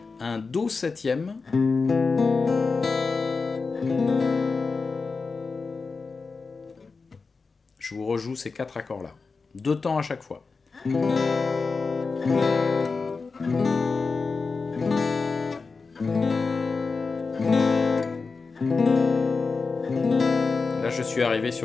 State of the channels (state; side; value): quieter; right; 4.4 dB